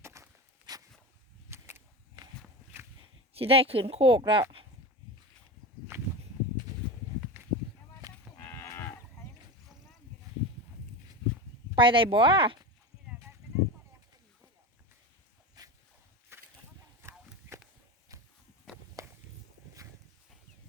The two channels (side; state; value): both; normal; correlation 0.25